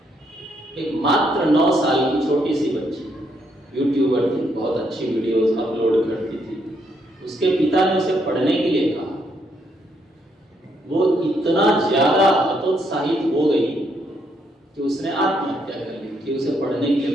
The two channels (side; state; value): both; normal; correlation 0.74